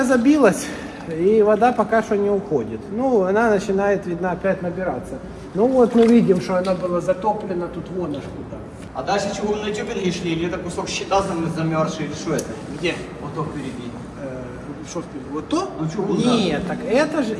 забилась, и вода пока что не уходит. Ну, она начинает, видно, опять набираться. Ну вот мы видим, что она была затоплена тут вон аж куда. А дальше чего вы на тюбинге шли? Или это кусок щита замерзший? Или что это? Где? Вот то впереди. Что впереди? Вот то? Ну, чугун, Нет, так это же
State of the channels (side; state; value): both; identical; correlation 1.00